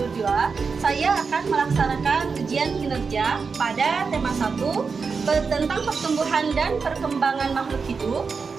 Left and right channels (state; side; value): quieter; left; 5.1 dB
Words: saya akan melaksanakan ujian kinerja pada tema 1 tentang pertumbuhan dan perkembangan makhluk hidup,